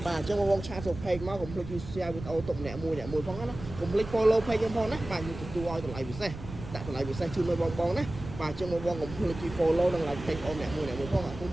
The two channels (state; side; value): noise; right; rumble, 11 dB below the sound